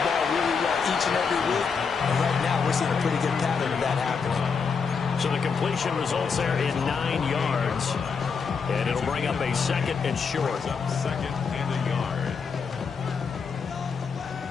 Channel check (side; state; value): right; quieter; 5.6 dB